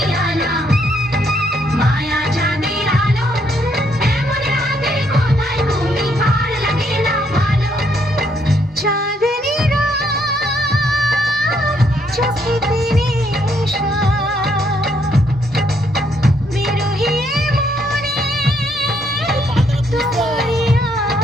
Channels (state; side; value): normal; both; correlation 0.72